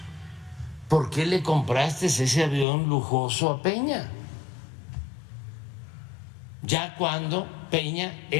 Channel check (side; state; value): right; drops out; at 2.7 s